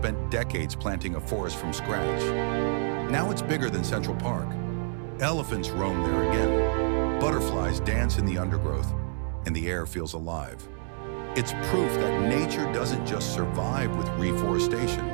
decades planting a forest from scratch. Now it's bigger than Central Park. Elephants roam there again. Butterflies dance in the undergrowth, and the air feels alive. It's proof that nature doesn't just survive with reforestation.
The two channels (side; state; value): left; silent; digital silence